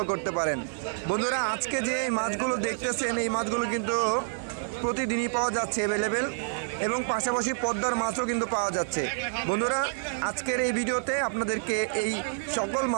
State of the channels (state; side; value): silent; left; 59 dB below the other